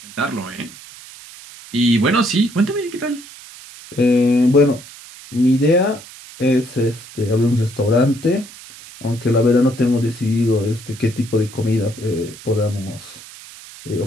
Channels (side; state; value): right; noise; hiss, 18 dB below the sound